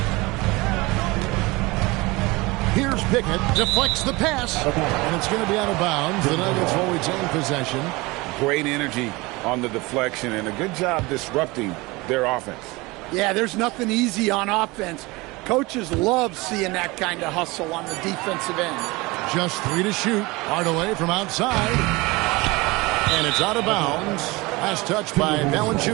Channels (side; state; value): left; quieter; 23.1 dB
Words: Here's Pickett, deflects the pass, and it's going to be out of bounds. The Nuggets will retain possession. Great energy on the deflection, and a good job disrupting their offense. Yeah, there's nothing easy on offense. Coaches love seeing that kind of hustle on the defensive end. Just 3 to shoot. Hardaway from outside. And it's out of bounds. Last touch by